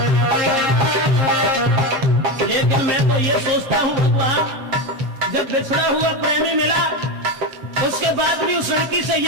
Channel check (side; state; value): left; late; 7.5 ms